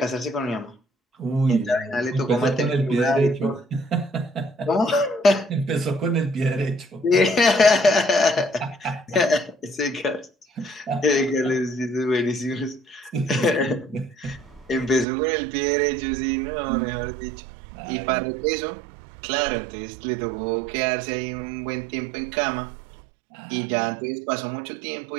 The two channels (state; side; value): drops out; left; at 15.1 s